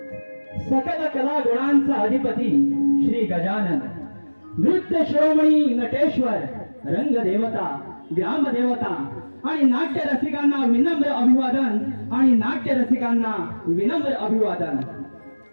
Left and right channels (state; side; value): inverted; both; correlation -1.00